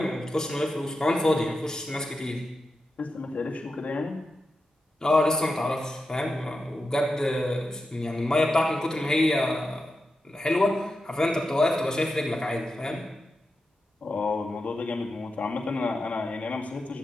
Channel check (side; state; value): both; normal; correlation 0.89